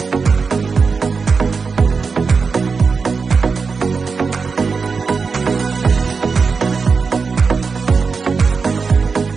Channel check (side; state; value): left; quieter; 5.0 dB